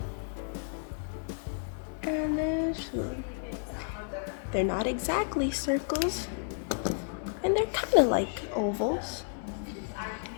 And then swoop. They're not exactly circles, and they're kind of like ovals.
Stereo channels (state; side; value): silent; right; digital silence